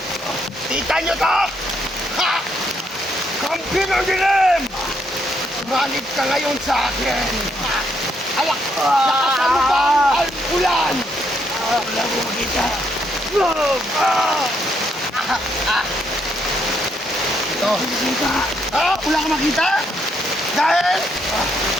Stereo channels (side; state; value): both; normal; correlation 0.74